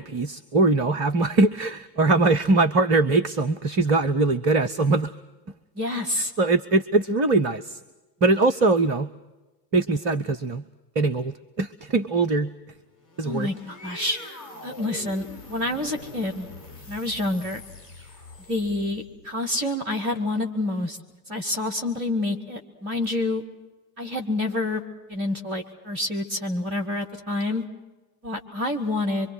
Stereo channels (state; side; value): late; left; 2.8 ms